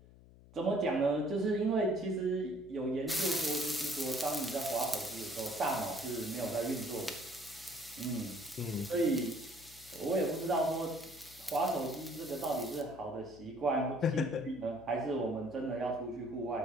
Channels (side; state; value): left; noise; hum, 22 dB below the sound